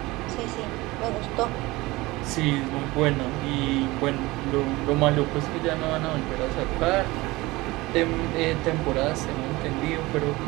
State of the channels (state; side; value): quieter; left; 20.8 dB